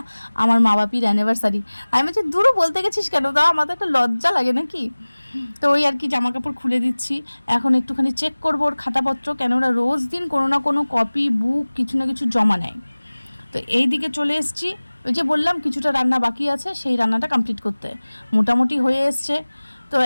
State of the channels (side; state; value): both; inverted; correlation -1.00